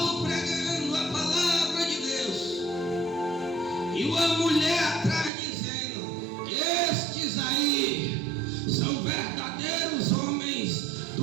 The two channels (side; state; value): left; drops out; at 5.3 s